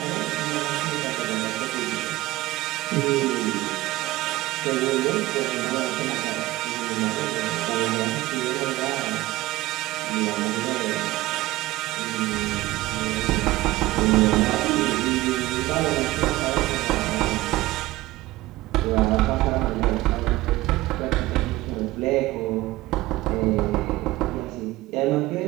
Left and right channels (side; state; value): left; quieter; 18.0 dB